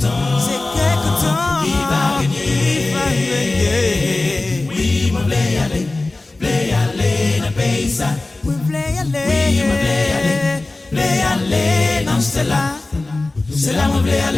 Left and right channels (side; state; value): right; quieter; 3.1 dB